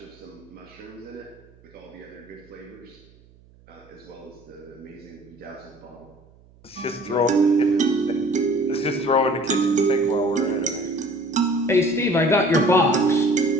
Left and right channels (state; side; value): noise; right; hum, 28 dB below the sound